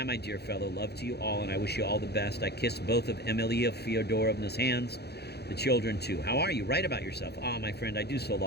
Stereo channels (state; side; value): late; right; 0.48 ms